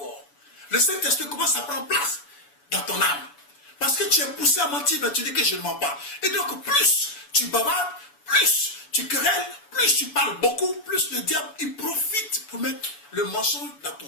Le Saint-Esprit commence à prendre place dans ton âme. Parce que tu es poussé à mentir, mais tu dis que je ne mens pas. Et donc plus tu bavardes, plus tu querelles, plus tu parles beaucoup, plus le diable il profite pour mettre le mensonge dans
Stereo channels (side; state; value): right; late; 7.0 ms